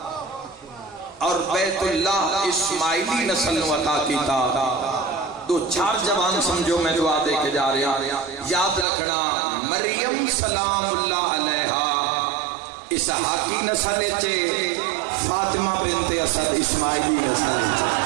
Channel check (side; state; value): left; drops out; at 8.8 s